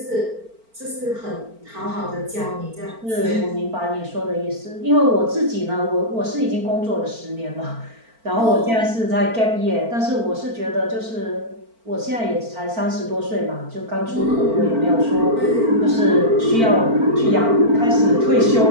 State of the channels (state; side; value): late; left; 4.4 ms